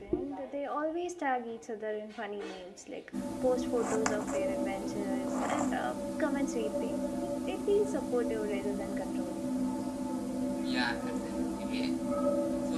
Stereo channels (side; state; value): both; identical; correlation 1.00